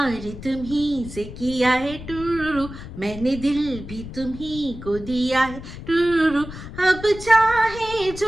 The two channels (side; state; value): left; noise; rumble, 12 dB below the sound